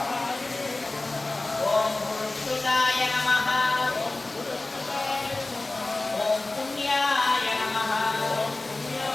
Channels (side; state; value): right; quieter; 3.0 dB